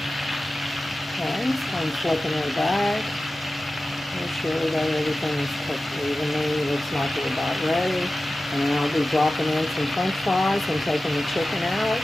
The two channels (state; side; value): normal; both; correlation 0.95